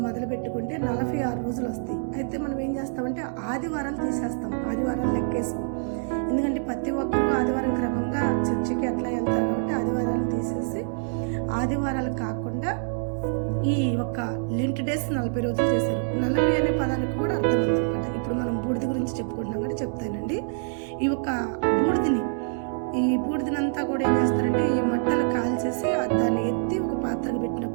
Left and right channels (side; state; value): left; silent; digital silence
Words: మొదలు పెట్టుకుంటే 46 రోజులు వస్తాయి. అయితే మనం ఏం చేస్తామంటే ఆదివారాలు తీసేస్తాం, ఆదివారాలు లెక్కేస్తాం. ఎందుకంటే ప్రతి ఒక్కరూ ఆదివారం క్రమంగా చర్చికి అట్లా వెళ్తారు కాబట్టి ఆదివారాలు తీసేసి ఆదివారాలు కాకుండా ఈ ఒక్క లెంట్ డేస్ 40 రోజులు చేశారు. 40 అనే పదానికి కూడా అర్థం ఉందన్నమాట. ఇప్పుడు మనం బూడిద గురించి చెప్పుకుంటున్నాం కాబట్టి చెప్తానండి. ఈ ఒక్క ఈ బూడిదనంతా కూడా ఏం చేస్తారంటే ఈ మట్టలు కాల్చేసి దాన్ని ఎత్తి ఒక పాత్రకు